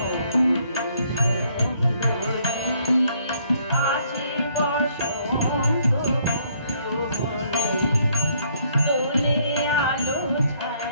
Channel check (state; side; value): inverted; both; correlation -0.67